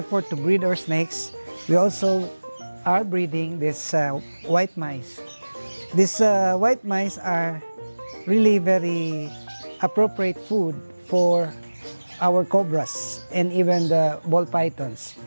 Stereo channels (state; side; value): inverted; both; correlation -1.00